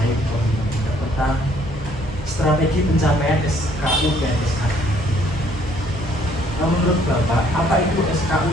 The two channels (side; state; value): both; normal; correlation 0.63